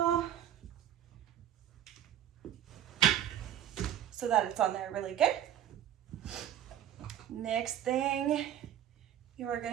so that it's on there really good. Next thing you are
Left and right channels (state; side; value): quieter; left; 10.8 dB